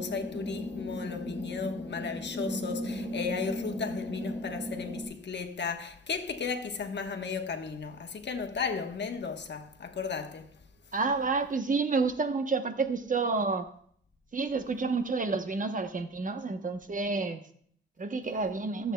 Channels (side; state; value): both; normal; correlation 0.35